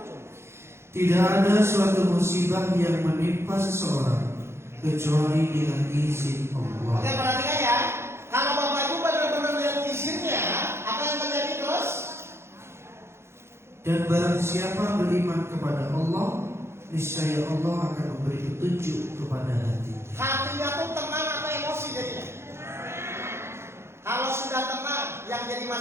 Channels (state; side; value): late; left; 0.12 ms